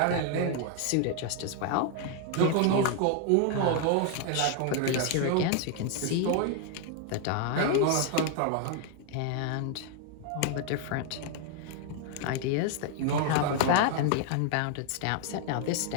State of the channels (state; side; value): different; both; correlation 0.00